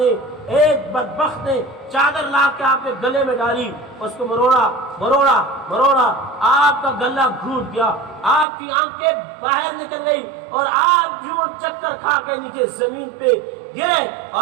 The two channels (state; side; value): drops out; left; at 8.5 s